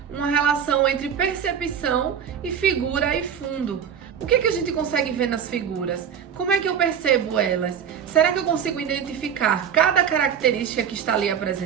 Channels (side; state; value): left; quieter; 8.0 dB